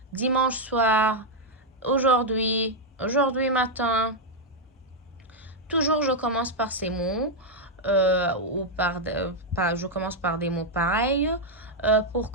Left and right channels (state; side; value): normal; both; correlation -0.01